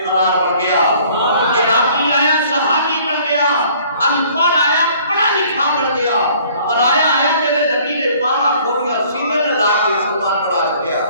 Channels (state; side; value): inverted; both; correlation -0.56